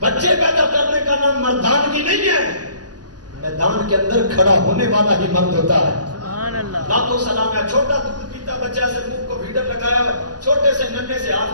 پیدا کرنے کا نام مردانگی نہیں ہے, میدان کے اندر کھڑا ہونے والا ہی مرد ہوتا ہے. لاکھوں سلام ہے. چھوٹا دودھ پیتا بچہ سے منہ کو بھیڑر لگایا ہے, چھوٹے سے ننھے سے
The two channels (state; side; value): late; left; 0.69 ms